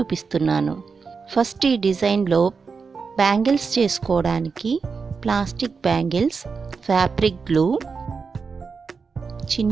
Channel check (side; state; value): left; quieter; 5.1 dB